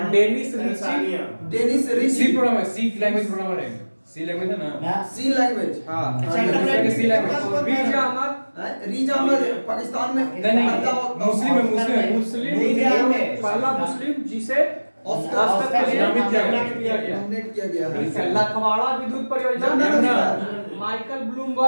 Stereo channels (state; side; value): inverted; both; correlation -1.00